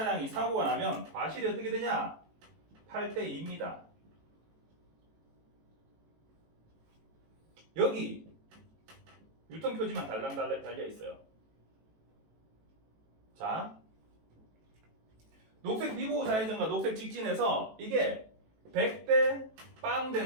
사고가 나면 과실이 어떻게 되냐? 8대2입니다. 여기 유턴 표지만 달랑 달려 있어요. 자, 녹색 비보호 좌회전과 녹색 직진에서 이게 100대 빵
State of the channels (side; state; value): left; late; 18 ms